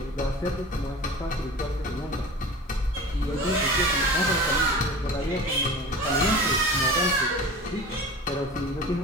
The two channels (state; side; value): normal; both; correlation 0.36